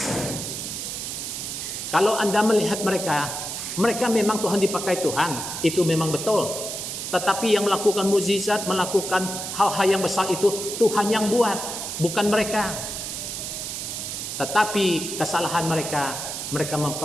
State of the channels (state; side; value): noise; right; hiss, 5 dB below the sound